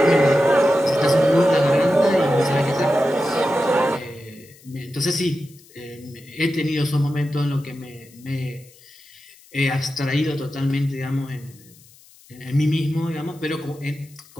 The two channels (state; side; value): noise; left; hiss, 26 dB below the sound